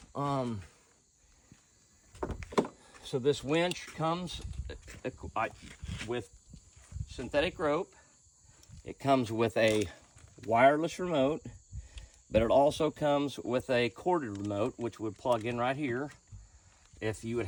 So this winch comes with synthetic rope. It comes with a wireless remote, but it also comes with a corded remote, which would plug in right here if you would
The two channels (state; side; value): identical; both; correlation 1.00